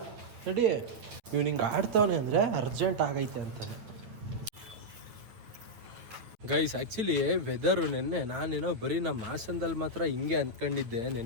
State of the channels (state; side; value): late; left; 9.1 ms